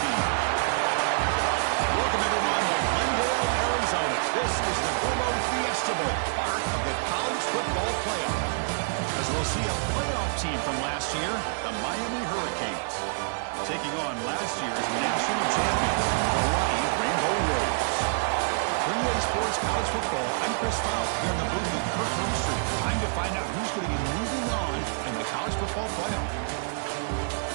team? Welcome, everyone, to Glendale, Arizona. This is the Verbo Fiesta Bowl, part of the college football playoff. As we'll see a playoff team from last year, the Miami Hurricanes, taking on last year's national champions, Hawaii Rainbow Warriors. 3A Sports College Football, I'm Chris Fowler, here in the booth with Kirk Hermstreet. Time to find out who's going to be moving on in the college football playoff.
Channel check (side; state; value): left; silent; 60 dB below the other